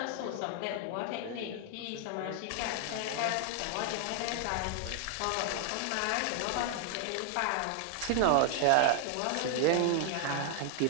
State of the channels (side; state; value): both; different; correlation 0.00